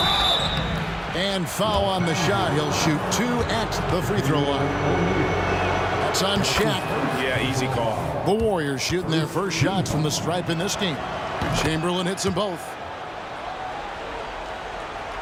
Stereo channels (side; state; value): both; identical; correlation 1.00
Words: And foul on the shot. He'll shoot 2 at the free throw line. That's on Shaq. Yeah, easy call. The Warriors shooting their first shots from the stripe in this game. Chamberlain hits them both.